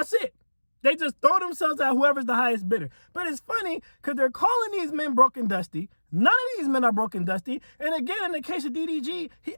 it. They just throw themselves at whoever's the highest bidder. But it's funny because they're calling these men broke and dusty. None of these men are broke and dusty. And again, in the case of DDG, he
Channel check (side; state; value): both; inverted; correlation -1.00